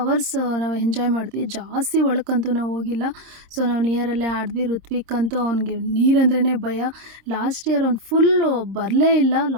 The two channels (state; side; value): late; left; 26 ms